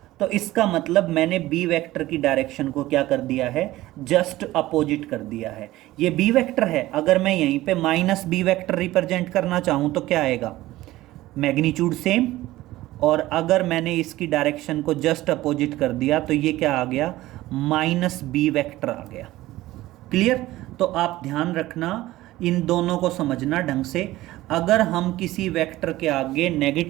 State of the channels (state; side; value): quieter; left; 16.8 dB